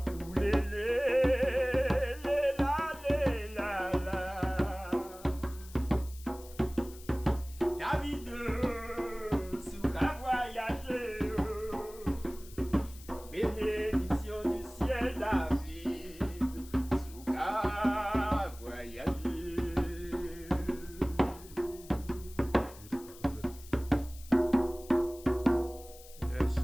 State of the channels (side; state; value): left; noise; hiss, 19 dB below the sound